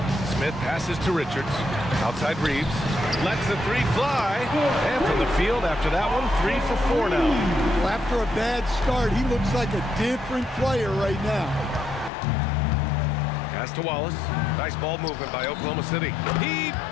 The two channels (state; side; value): drops out; right; at 12.1 s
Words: Smith passes to Richards. Outside Reeves. Lets the three fly. And from the field after that one, 3 for 4 now. Well, after a bad start, he looks like a different player right now. Pass to Wallace. Nice ball movement by Oklahoma City. He